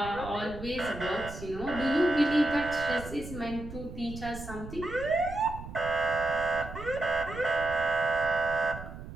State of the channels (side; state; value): right; noise; rumble, 12 dB below the sound